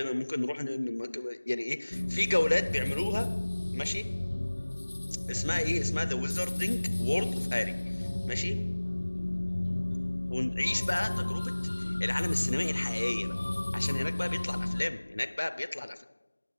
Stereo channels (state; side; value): inverted; both; correlation -1.00